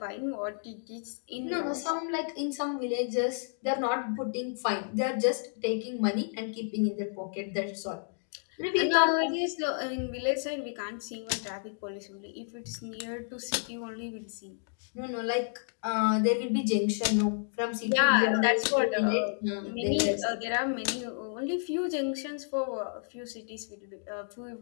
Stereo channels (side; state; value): right; silent; digital silence